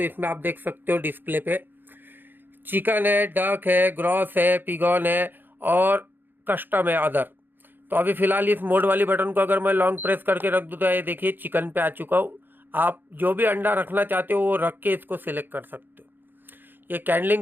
इसमें आप देख सकते हो डिस्प्ले पे चिकन है, डक है, ग्रॉस है, पिगॉन है और कस्टम है, अदर। तो अभी फ़िलहाल इस मोड वाली बटन को अगर मैं लॉन्ग प्रेस करके रख दूँ तो ये देखिए चिकन पे आ चुका हूँ। आप जो भी अंडा रखना चाहते हो वो रख के इसको सिलेक्ट कर सकते हो। ये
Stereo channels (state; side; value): late; left; 0.094 ms